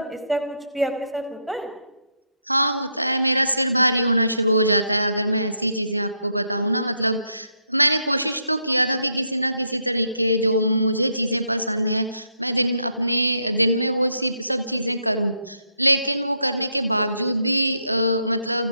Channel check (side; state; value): both; inverted; correlation -0.76